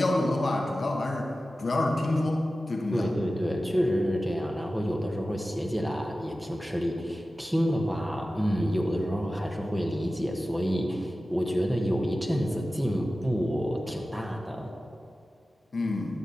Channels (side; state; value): both; normal; correlation 0.95